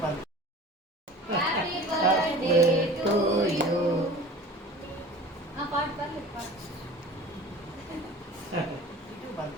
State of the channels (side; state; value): both; normal; correlation 0.41